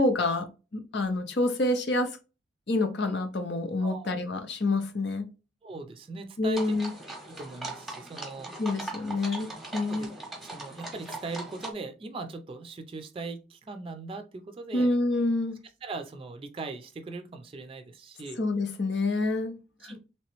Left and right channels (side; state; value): both; normal; correlation 0.64